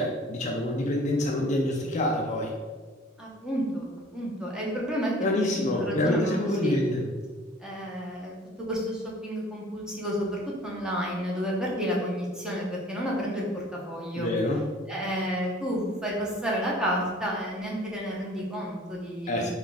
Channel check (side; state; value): both; normal; correlation 0.50